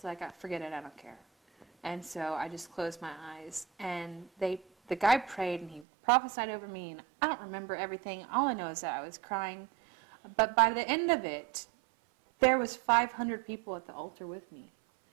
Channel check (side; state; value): left; drops out; at 5.9 s